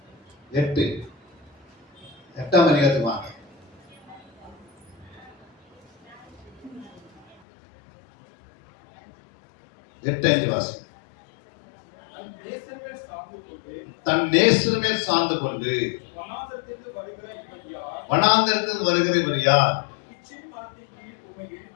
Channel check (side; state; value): right; drops out; at 7.4 s